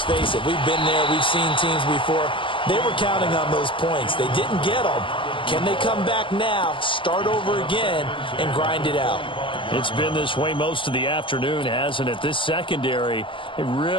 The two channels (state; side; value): late; right; 0.25 ms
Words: face it, we've been there. We've seen teams before. They were counting on those points. They didn't get them. Can they come back now, start over again, and grind it out? It's been this way most of the afternoon, hasn't it? This secondary, it